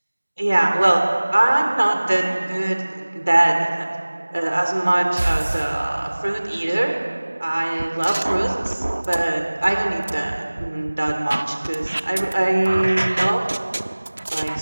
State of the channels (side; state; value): both; inverted; correlation -1.00